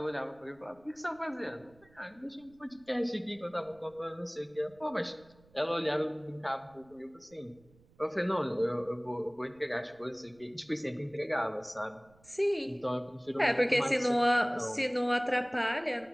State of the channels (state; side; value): noise; right; rumble, 29 dB below the sound